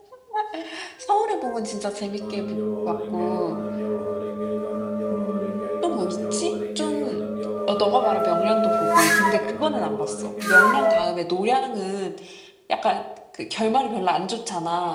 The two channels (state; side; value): identical; both; correlation 1.00